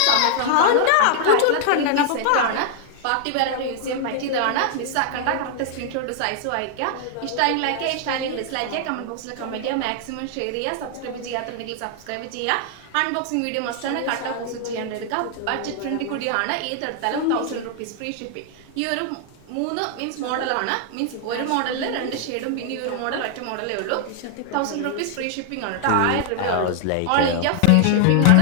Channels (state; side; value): different; both; correlation 0.00